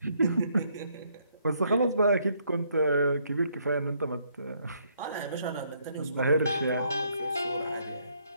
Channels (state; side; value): inverted; both; correlation -0.70